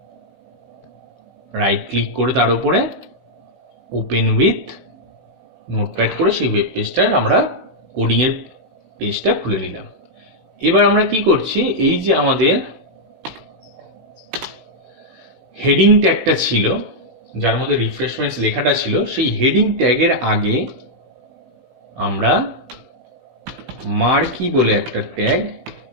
রাইট ক্লিক করে তার উপরে ওপেন উইথ নোটপ্যাড করে সেই ওয়েব পেজটার আমরা কোডিংয়ের পেজটা খুলে নিলাম। এবার আমরা কি করছি, এই যে আমাদের হেডিং ট্যাগটা ছিল যার মধ্যে রিফ্রেশমেন্টস লেখাটা ছিল, সেই হেডিং ট্যাগের আগে আমরা মার্কি বলে একটা ট্যাগ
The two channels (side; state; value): left; late; 16 ms